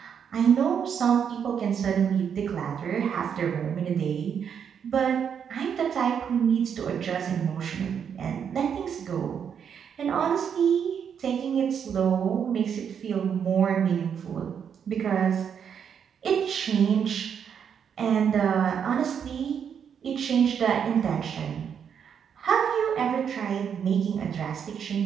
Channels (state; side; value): quieter; left; 7.7 dB